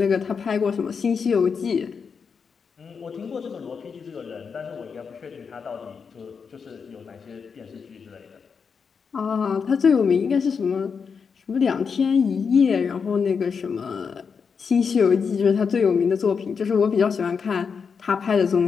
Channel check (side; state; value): right; quieter; 5.9 dB